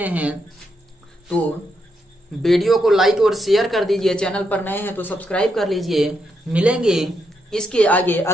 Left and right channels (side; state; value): both; normal; correlation 0.80